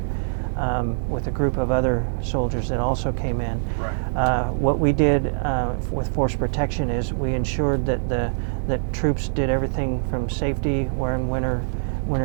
with a group of other soldiers that also came in. Right. What we did with force protection is we ensured that troops did everything from safety, wearing winter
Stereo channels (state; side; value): silent; left; 62 dB below the other